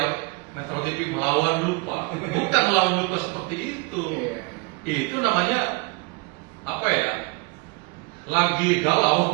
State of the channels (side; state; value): left; quieter; 28.2 dB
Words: Metro TV melawan lupa. Bukan melawan lupa seperti itu. Itu namanya apa ya? Lagi